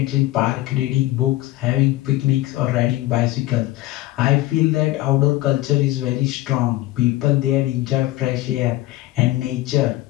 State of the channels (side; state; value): right; quieter; 17.0 dB